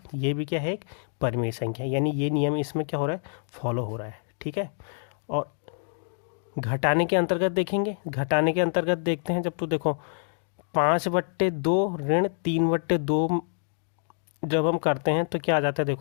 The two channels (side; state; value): right; silent; 60 dB below the other